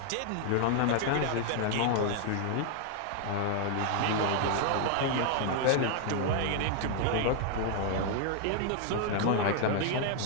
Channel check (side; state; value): both; different; correlation 0.00